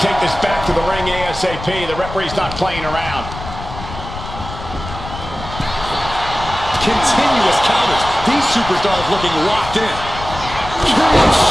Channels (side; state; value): left; noise; rumble, 11 dB below the sound